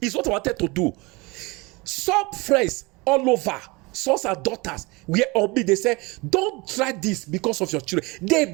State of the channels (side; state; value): left; quieter; 25.0 dB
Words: It's what I wanted to do. Some friends all over, sons and daughters, were on me. They say, don't try this because of your children.